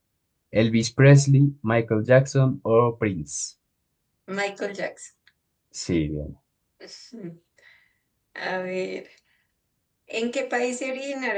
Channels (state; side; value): identical; both; correlation 1.00